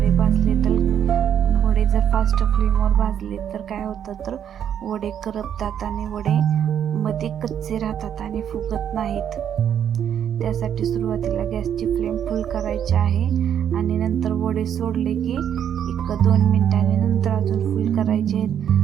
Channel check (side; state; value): left; quieter; 9.2 dB